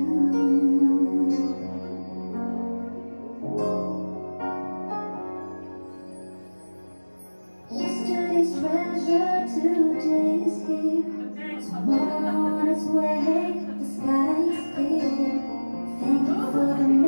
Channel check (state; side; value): inverted; both; correlation -1.00